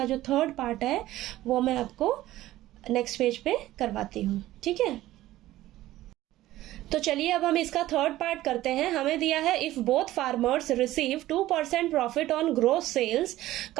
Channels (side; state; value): left; quieter; 15.4 dB